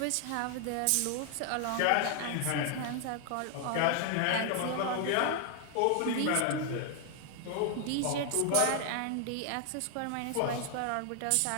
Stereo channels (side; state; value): both; different; correlation 0.00